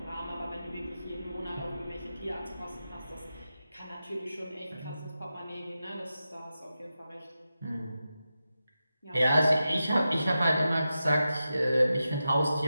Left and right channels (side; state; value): both; inverted; correlation -0.91